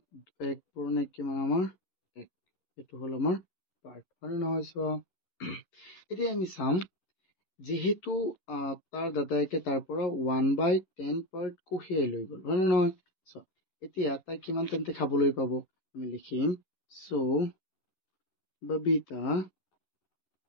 1 পূৰণ 1 কিমান আমাৰ 1 এইটো হ'ল আমাৰ পাৰ্ট হয় নহয় চোৱা. এতিয়া আমি চাম যেহেতু তাৰ দাদাইকে তাৰ পৰা 1/10 পাৰ্ট কঢ়িয়াই লৈ গ'ল হয় নহয় চোৱা এতিয়া তাই কিমান তেন্তে খাবলৈ পাব আমি লিখিম so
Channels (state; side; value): late; right; 11 ms